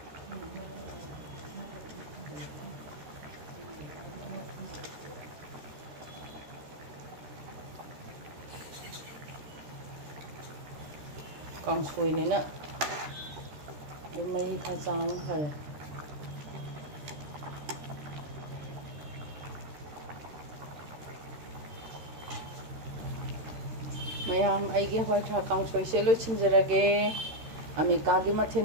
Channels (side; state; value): left; late; 13 ms